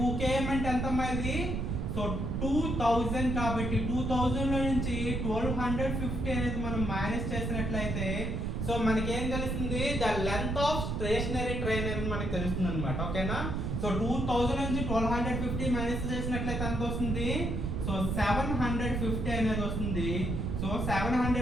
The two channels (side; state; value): right; noise; rumble, 1 dB below the sound